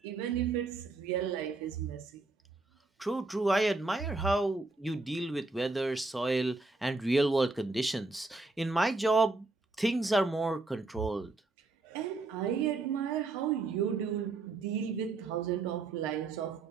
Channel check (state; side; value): quieter; left; 3.4 dB